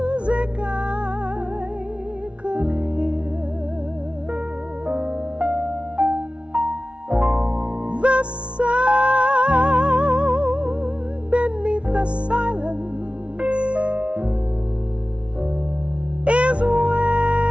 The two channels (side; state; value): left; late; 0.061 ms